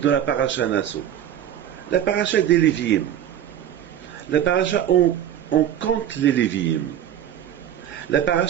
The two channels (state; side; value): quieter; left; 10.4 dB